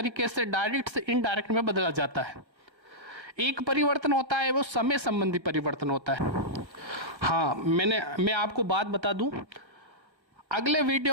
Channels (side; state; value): left; late; 1.4 ms